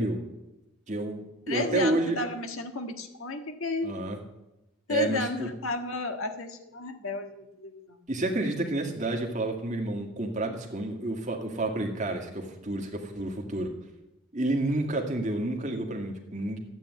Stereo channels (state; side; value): normal; both; correlation 0.41